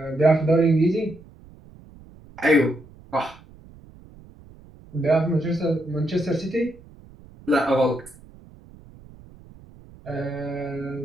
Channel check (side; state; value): right; noise; rumble, 22 dB below the sound